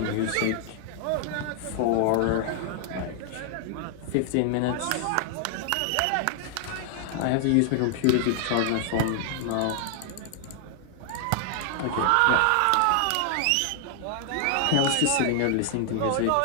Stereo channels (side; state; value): both; different; correlation 0.00